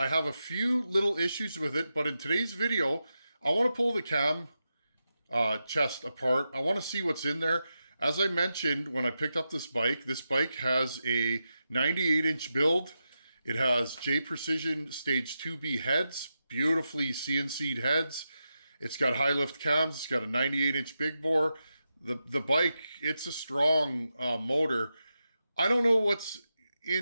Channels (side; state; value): both; inverted; correlation -0.89